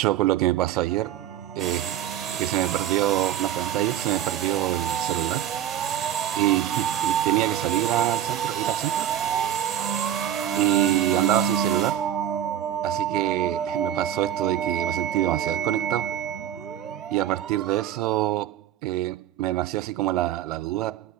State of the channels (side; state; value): left; quieter; 11.4 dB